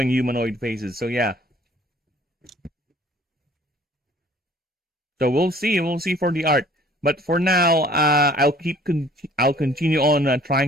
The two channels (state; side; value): normal; both; correlation 0.54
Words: humanoid faces. So yeah. So we'll see for the art. But for now, I'll continue on